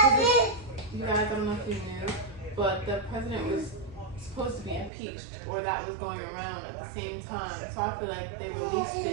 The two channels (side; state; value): left; drops out; at 4.9 s